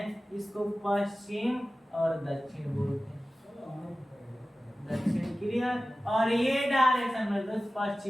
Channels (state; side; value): normal; both; correlation 0.96